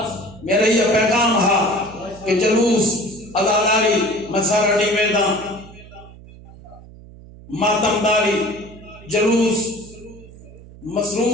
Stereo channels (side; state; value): right; noise; hum, 20 dB below the sound